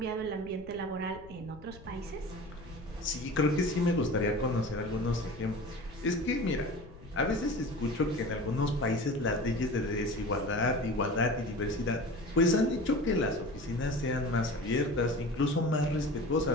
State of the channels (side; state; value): left; noise; rumble, 18 dB below the sound